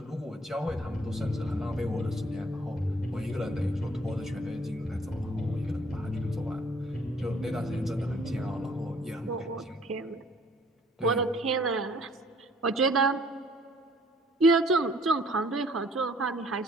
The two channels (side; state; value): both; normal; correlation 0.59